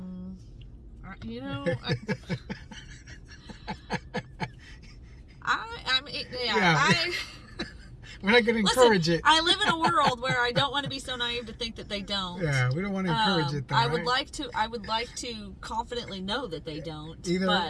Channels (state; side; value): identical; both; correlation 1.00